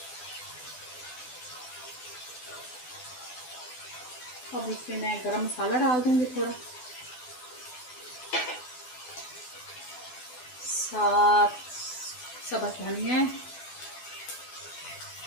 अब इसमें मैं गरम मसाला डाल दूँगी थोड़ा, साथ सब्ज़ धनिया,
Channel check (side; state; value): right; late; 12 ms